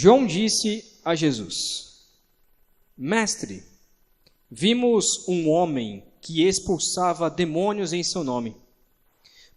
disse a Jesus: Mestre, vimos um homem que expulsava demônios em seu nome,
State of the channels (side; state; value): both; identical; correlation 1.00